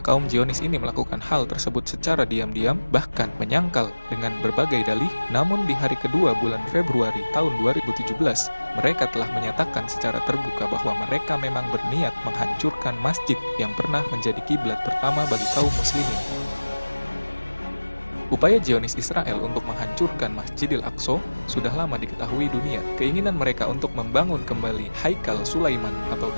kaum Zionis ini melakukan hal tersebut secara diam-diam, bahkan menyangkal dengan berbagai dalih, namun di hari kedua bulan Februari tahun 2017, mereka telah menyatakan secara terbuka bahwa mereka memang berniat menghancurkan masjid yang pernah menjadi kiblat pertama bagi kaum muslimin. Upaya Zionis Israel untuk menghancurkan Masjidil Aqsa sudah lama diketahui dunia. Keinginan mereka untuk membangun kembali Haikal Sulaiman atau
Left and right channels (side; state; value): both; inverted; correlation -1.00